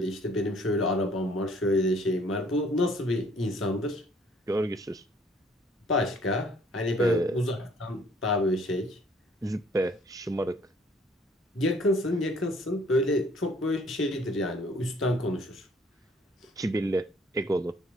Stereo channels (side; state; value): both; normal; correlation 0.59